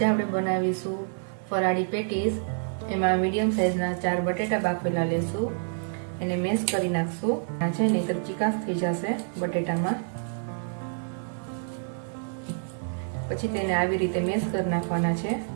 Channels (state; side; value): silent; left; 56 dB below the other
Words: આપણે બનાવીશું ફરાળી પેટીસ. એમાં મીડિયમ સાઇઝના 4 બટેટા બાફેલા લેશું, એને મેશ કરી નાખશું. આ છે ને એક ચીકાશ થઈ જશે બટેટામાં. પછી તેને આવી રીતે મેશ કરી નાખવાના છે.